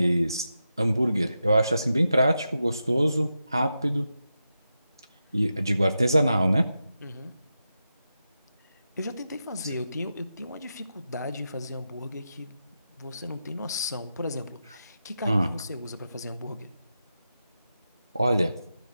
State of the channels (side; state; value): both; inverted; correlation -0.89